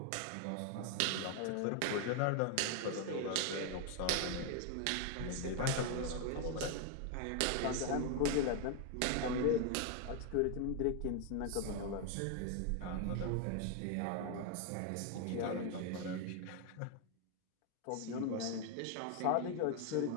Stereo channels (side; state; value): both; different; correlation 0.01